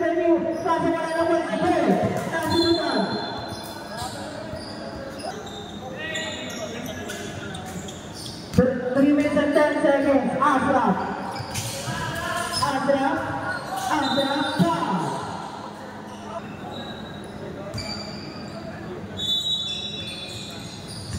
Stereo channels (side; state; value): both; identical; correlation 1.00